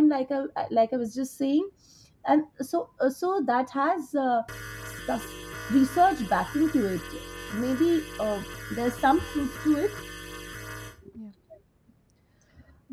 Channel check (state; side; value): identical; both; correlation 1.00